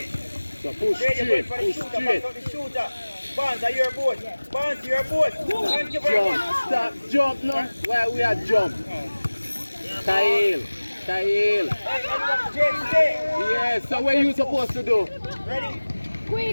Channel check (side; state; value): both; inverted; correlation -1.00